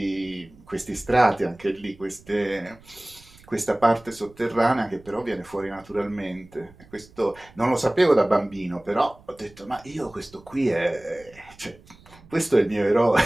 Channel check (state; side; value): noise; right; rumble, 25 dB below the sound